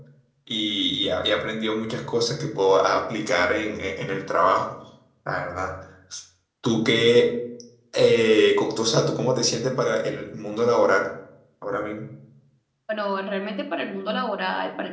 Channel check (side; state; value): both; identical; correlation 1.00